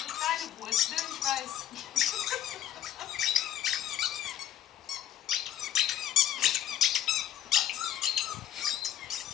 deine Wurst, ne? Ich weiß.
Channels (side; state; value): right; quieter; 11.2 dB